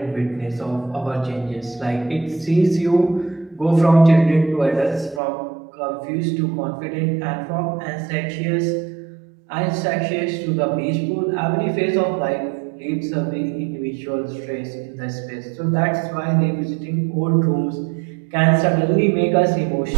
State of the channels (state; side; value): drops out; left; at 5.2 s